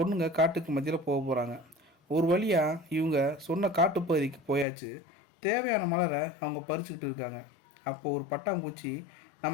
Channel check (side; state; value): right; drops out; at 4.7 s